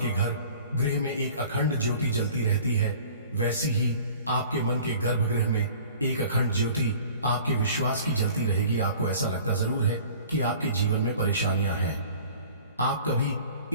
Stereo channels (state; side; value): inverted; both; correlation -0.47